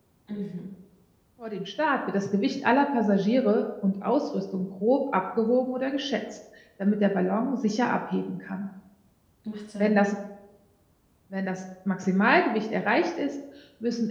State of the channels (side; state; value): both; identical; correlation 1.00